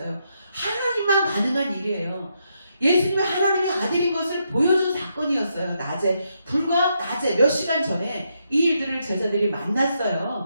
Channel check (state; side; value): inverted; both; correlation -0.79